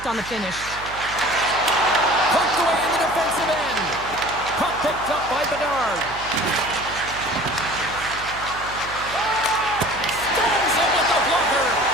on the finish. Poked away in the defensive end. Puck picked up by Bedard. Stones him with the blocker.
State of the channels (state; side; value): noise; right; hum, 16 dB below the sound